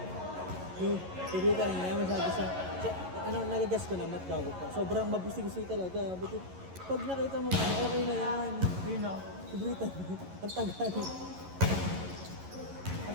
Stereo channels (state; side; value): late; left; 11 ms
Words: Yung TV kanina, masabi sa nagagas ko na, mat bago pa. Sobrang mabusig-busig talaga. But pag nakita mo, okay na yan. Yun o. Sobritan. Ang tagal.